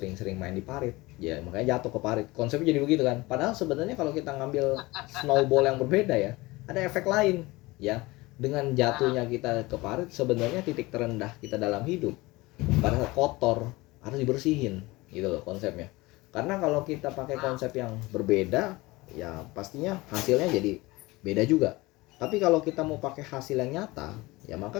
main di parit, ya makanya jatuh ke parit. Konsepnya jadi begitu kan. Padahal sebenarnya kalau kita ngambil snowball yang berbeda ya, ada efek lain ya. Dengan jatuhnya kita ke parit, sebenarnya titik terendah kita dalam hidup pada saat kotor harus dibersihin gitu loh konsepnya. Karena kalau kita pakai konsep yang berbeda, ya pastinya hasilnya jadi beda juga. Tapi kalau kita mau pakai hasil yang nyata, ya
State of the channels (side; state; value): right; quieter; 21.5 dB